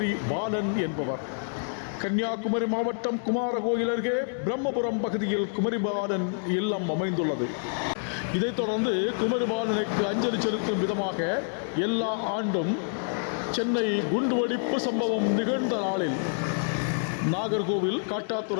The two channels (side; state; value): right; silent; 60 dB below the other